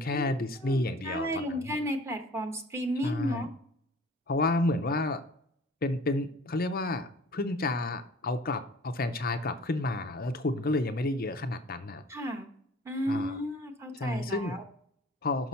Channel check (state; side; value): normal; both; correlation 0.48